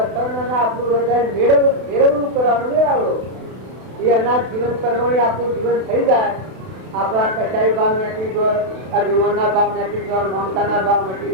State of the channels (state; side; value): late; left; 32 ms